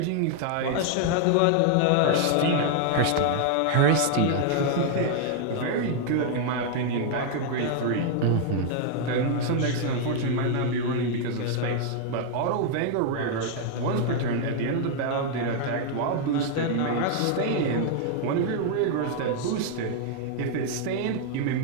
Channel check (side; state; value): both; different; correlation 0.00